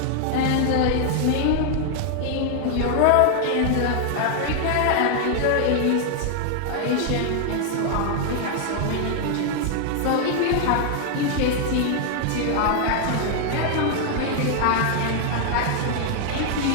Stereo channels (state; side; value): different; both; correlation 0.00